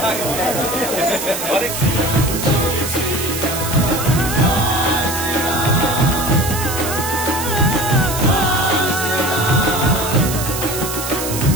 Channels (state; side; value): noise; right; hiss, 5 dB below the sound